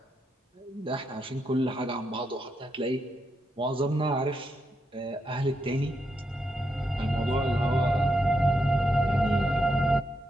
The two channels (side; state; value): both; normal; correlation 0.82